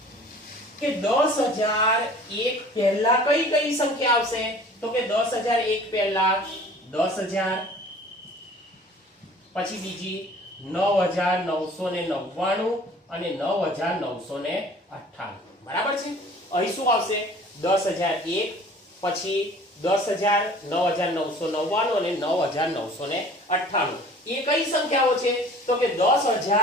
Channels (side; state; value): both; normal; correlation 0.47